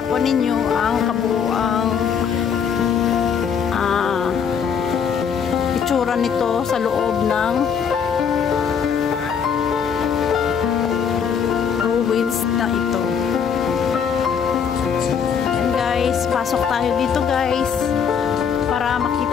po ninyo ang kabuuang itsura nito sa loob ng ruins na ito. Ayan guys, pasok tayo dito guys para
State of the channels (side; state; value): right; quieter; 7.1 dB